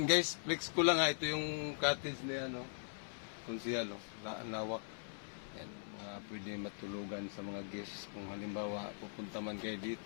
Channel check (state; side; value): silent; right; 51 dB below the other